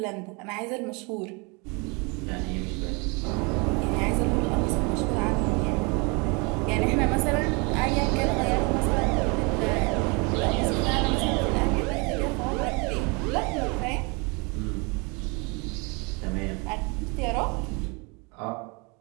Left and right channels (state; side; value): quieter; left; 30.4 dB